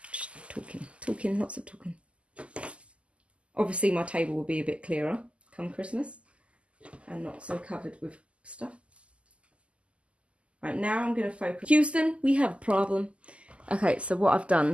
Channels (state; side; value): late; left; 0.057 ms